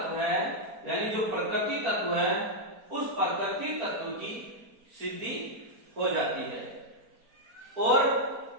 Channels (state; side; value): late; left; 4.4 ms